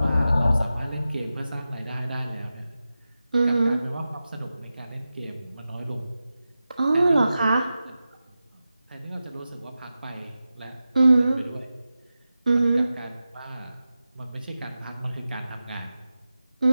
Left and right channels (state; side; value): inverted; both; correlation -0.93